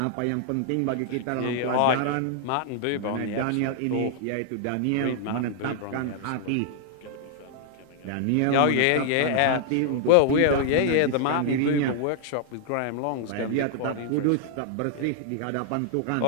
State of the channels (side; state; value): both; different; correlation -0.01